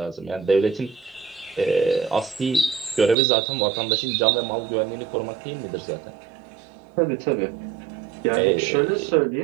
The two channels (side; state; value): left; drops out; at 3.2 s